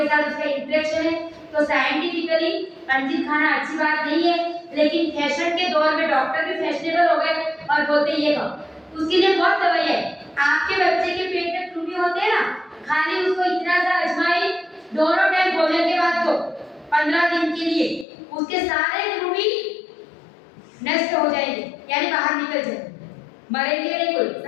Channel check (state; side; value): drops out; right; at 18.1 s